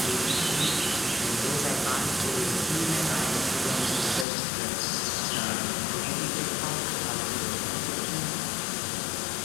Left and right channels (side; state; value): right; drops out; at 4.2 s